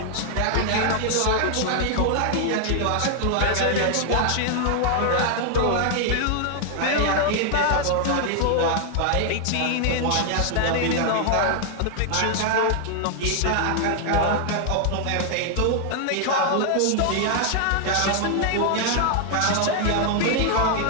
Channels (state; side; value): different; both; correlation 0.00